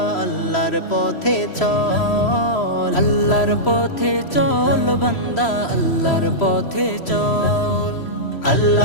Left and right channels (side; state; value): right; late; 3.0 ms